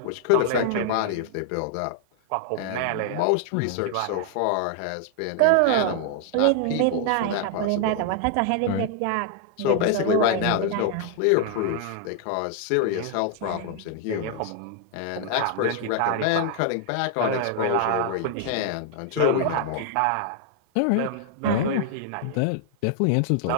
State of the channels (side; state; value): both; different; correlation 0.00